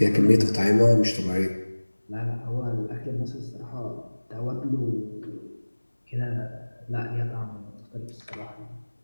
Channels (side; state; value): both; inverted; correlation -1.00